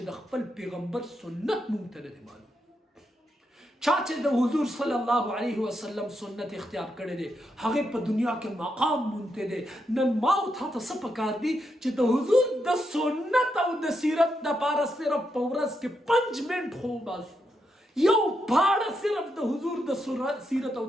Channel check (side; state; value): both; normal; correlation 0.82